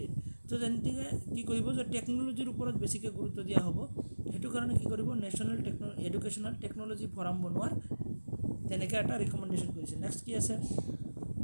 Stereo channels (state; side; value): inverted; both; correlation -1.00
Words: তো যেনেকৈ কি কৰিব যে টেকন'লজিৰ ওপৰত বেছিকৈ গুৰুত্ব দিয়া হ'ব সেইটো কাৰণে কি কৰিব নেশ্যনেল এডুকেশ্যনেল টেকন'লজি ফৰাম বনোৱাৰ তেনেকৈ এটা ৰিকমেণ্ডেশ্যন কৰিছে নেক্সট কি আছে